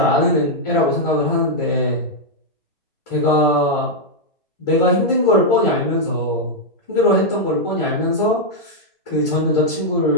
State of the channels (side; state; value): both; normal; correlation -0.03